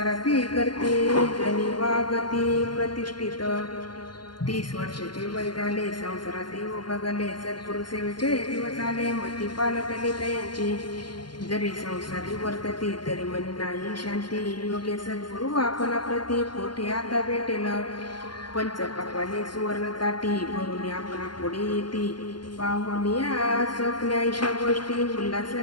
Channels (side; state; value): right; late; 0.71 ms